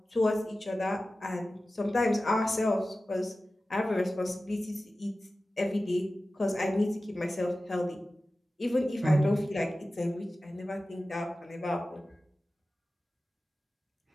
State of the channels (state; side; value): normal; both; correlation 0.95